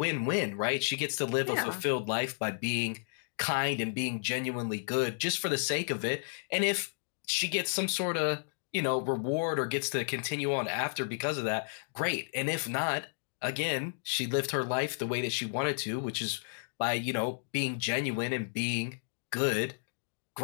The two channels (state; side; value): silent; right; digital silence